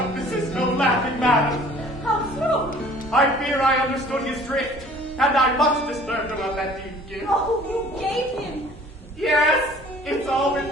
this is no laughing matter. How so? I fear I understood his drift, and I'm much disturbed about that deed gift. Oh, you gave him. Yes, it's all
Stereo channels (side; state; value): both; normal; correlation 0.51